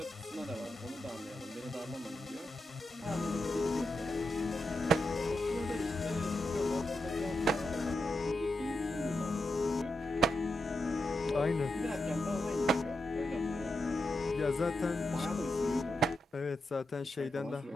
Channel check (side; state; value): both; normal; correlation 0.86